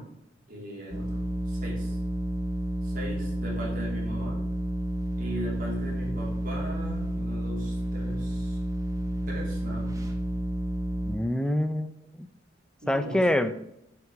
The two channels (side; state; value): both; normal; correlation 0.90